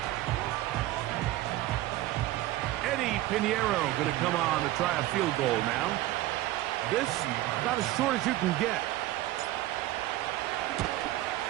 Eddie Pinheiro going to come on to try a field goal now. This about as short as you can get.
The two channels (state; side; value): quieter; left; 15.9 dB